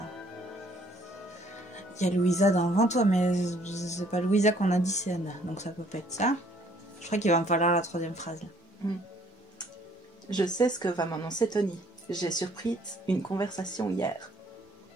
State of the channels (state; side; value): normal; both; correlation 0.62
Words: Louisa dans 20 toi, mais c'est pas Louisa qu'on a dit, c'est Anna. Donc ça peut pas être ça. Je crois qu'il va me falloir la troisième phrase. Là. Je sais ce que va m'annoncer Tony. J'ai surpris une conversation hier.